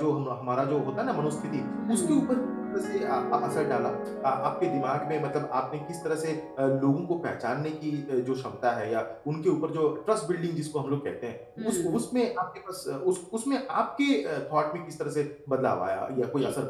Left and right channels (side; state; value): both; identical; correlation 1.00